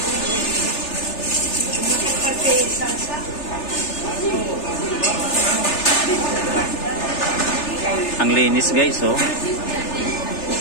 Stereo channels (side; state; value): right; late; 3.3 ms